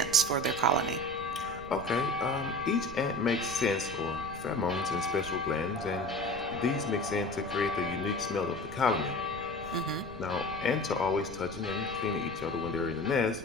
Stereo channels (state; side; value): noise; right; rumble, 14 dB below the sound